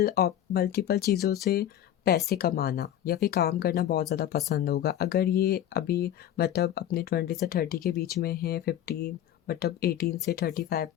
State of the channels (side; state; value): right; quieter; 11.3 dB